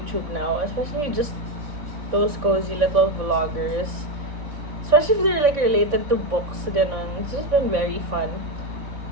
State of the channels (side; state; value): left; late; 3.5 ms